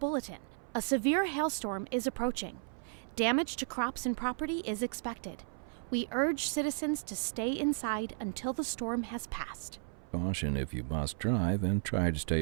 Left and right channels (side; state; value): left; silent; 55 dB below the other